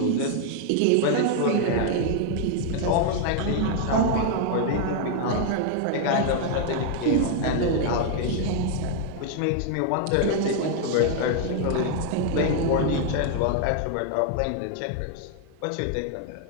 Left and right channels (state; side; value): different; both; correlation 0.00